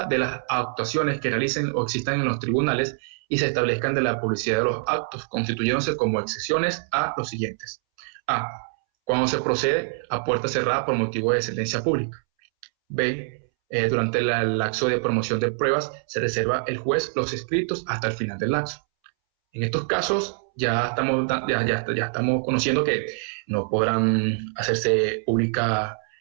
de las actuaciones que realicen o existan en los tribunales y se establezcan de la publicidad de los actos, constituyéndose como excepciones a los siguientes. A. Cuando se procede a puerta cerrada por motivo de sentencia pública. B. Durante el lapso de promoción de pruebas se reserva el juez los escritos hasta el final del lapso. En estos casos ya estamos conociendo que no podrán hacerse pública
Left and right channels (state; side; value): silent; left; 62 dB below the other